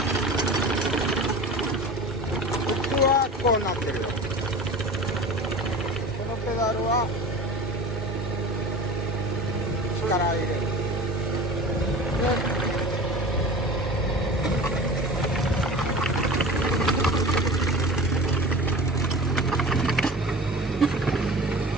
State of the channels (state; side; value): normal; both; correlation 0.36